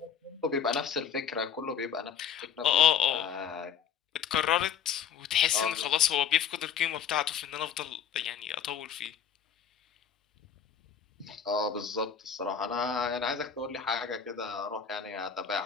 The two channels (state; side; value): quieter; right; 7.8 dB